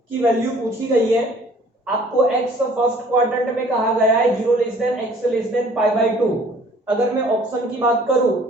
की वैल्यू पूछी गई है। आपको x फर्स्ट क्वाड्रेंट में कहा गया है 0 less than x less than π/2। अगर मैं ऑप्शन की बात करूं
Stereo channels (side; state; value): both; normal; correlation 0.54